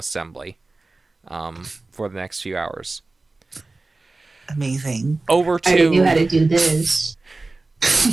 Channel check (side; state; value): left; quieter; 3.3 dB